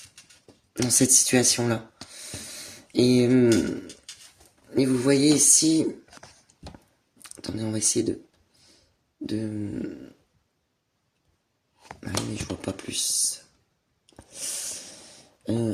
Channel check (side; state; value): both; identical; correlation 1.00